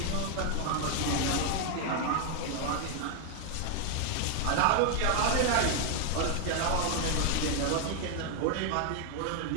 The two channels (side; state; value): both; different; correlation 0.00